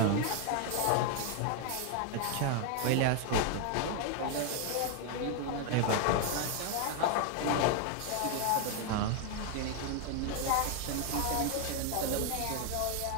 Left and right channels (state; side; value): different; both; correlation 0.00